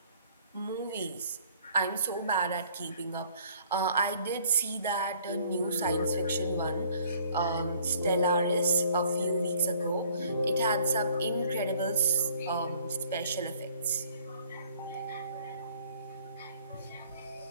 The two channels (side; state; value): both; inverted; correlation -0.57